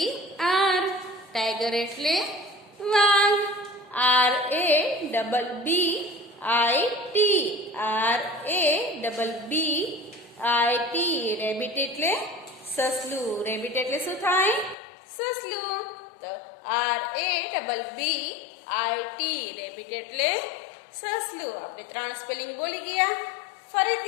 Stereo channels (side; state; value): right; drops out; at 14.8 s